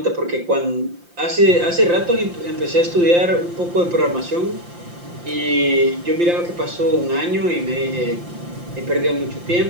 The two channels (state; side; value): late; left; 5.8 ms